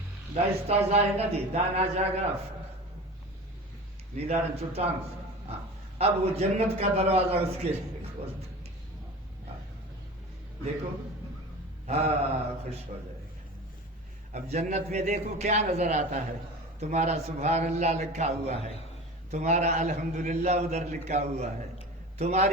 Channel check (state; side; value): normal; both; correlation 0.34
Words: دا استازائے نہ دی دانا جاگا نیدارن چٹان. اب وہ جنت کا دروازہ اس کے لیے کھولتا. دیکھو ہاں خوش ہو جائے گا. اب جنت میں دیکھو کیا نظر آتا ہے. تمہارا سبحان اللہ لکھا ہوا ہے, تمہارا الحمدللہ ادھر لکھا ہوا ہے,